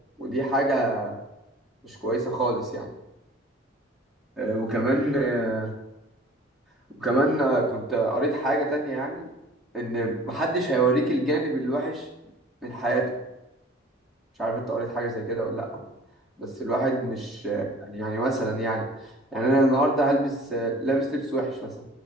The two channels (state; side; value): normal; both; correlation 0.47